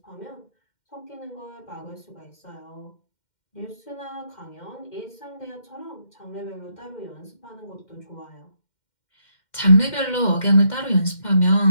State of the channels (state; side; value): late; right; 2.1 ms